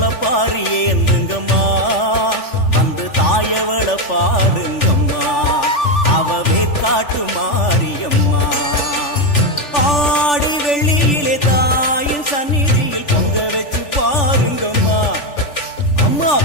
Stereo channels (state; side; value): late; right; 3.4 ms